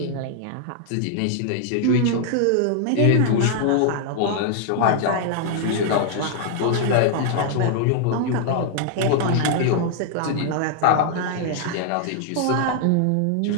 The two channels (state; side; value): different; both; correlation -0.01